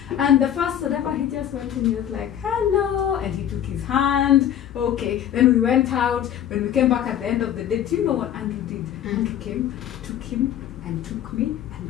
And the first whatever, he just went and he was like, hello, and he took his hand. Okay. Then we went out. When we came back at the end of the day, do you know what Andrew did? Andrew came, took him and took me and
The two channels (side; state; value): right; quieter; 10.4 dB